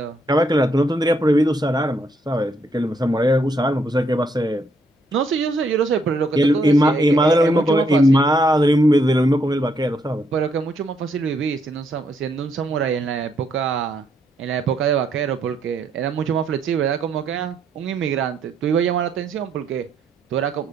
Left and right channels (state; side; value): normal; both; correlation 0.74